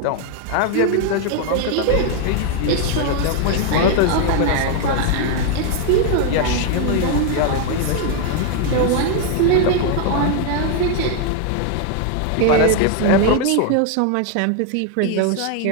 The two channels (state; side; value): different; both; correlation 0.01